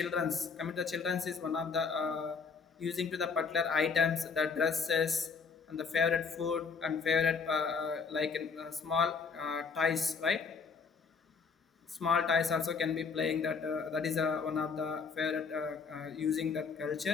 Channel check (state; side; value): quieter; right; 5.3 dB